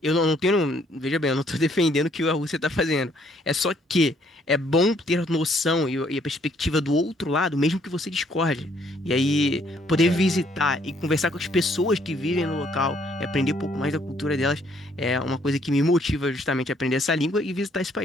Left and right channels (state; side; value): normal; both; correlation 0.66